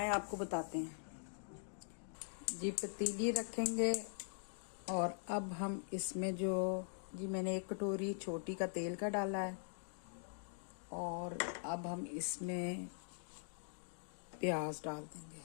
आपको बताते हैं। जी पतीली रखेंगे और अब हम इसमें जो जी मैंने 1 कटोरी छोटी का तेल का डाला है और अब हम इसमें प्याज डाल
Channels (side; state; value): right; silent; digital silence